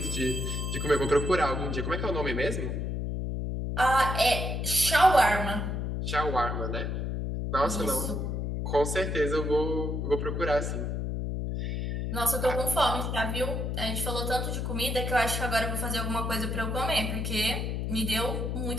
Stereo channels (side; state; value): left; noise; hum, 2 dB below the sound